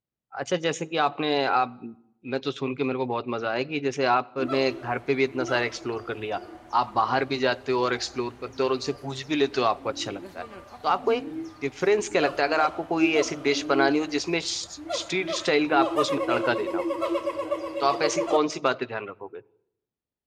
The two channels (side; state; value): both; identical; correlation 1.00